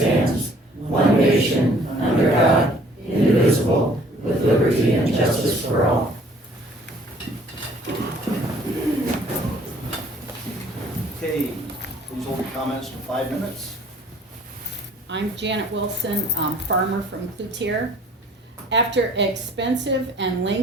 one nation, under God, indivisible, with liberty and justice for all. Okay, please hold your comments to 5 minutes. I'm Janet Wilson, farmer from Cloutier. After expensive and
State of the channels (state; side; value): normal; both; correlation 0.56